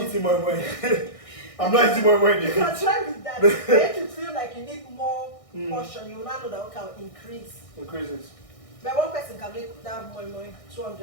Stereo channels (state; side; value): late; right; 1.6 ms